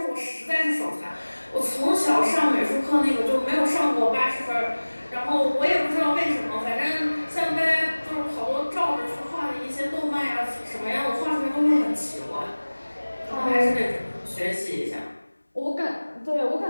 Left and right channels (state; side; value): inverted; both; correlation -1.00